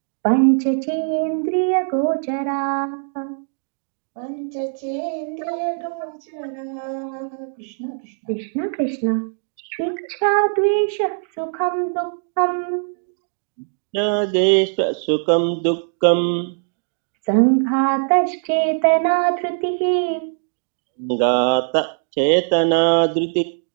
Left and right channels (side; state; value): left; silent; digital silence